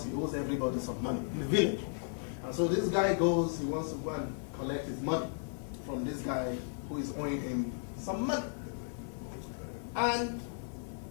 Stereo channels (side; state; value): right; silent; 54 dB below the other